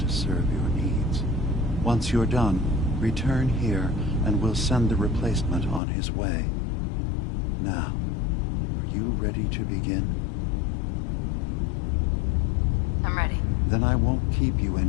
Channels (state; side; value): drops out; right; at 5.8 s